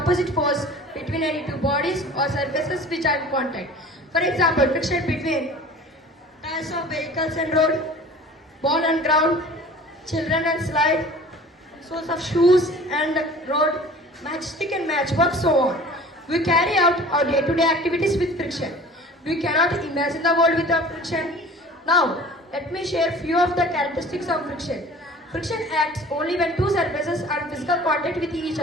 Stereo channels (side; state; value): both; normal; correlation 0.44